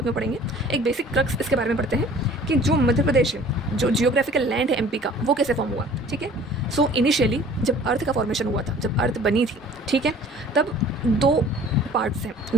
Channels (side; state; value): both; normal; correlation 0.50